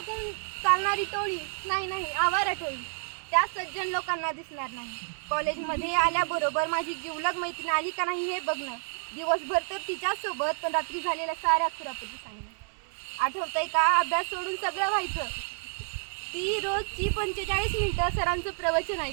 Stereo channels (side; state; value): left; silent; 58 dB below the other